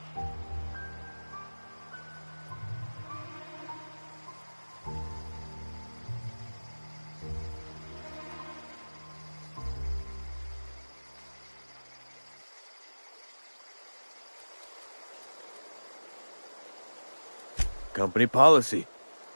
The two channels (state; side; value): inverted; both; correlation -1.00